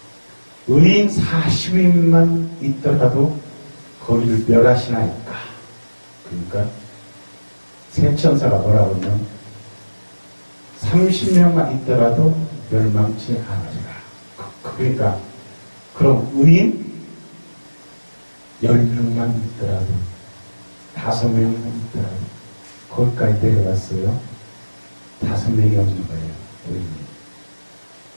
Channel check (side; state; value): both; inverted; correlation -1.00